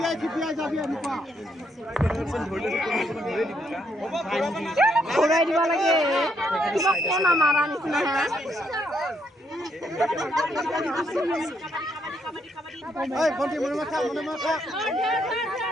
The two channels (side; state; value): both; normal; correlation 0.74